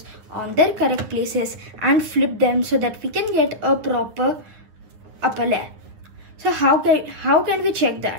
on their correct places and flip them so that we can get a proper upper layer. So how can we check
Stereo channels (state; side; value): late; left; 9.7 ms